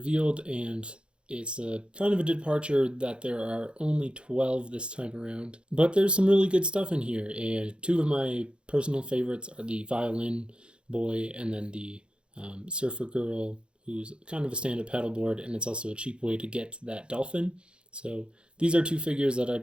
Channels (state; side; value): late; left; 0.056 ms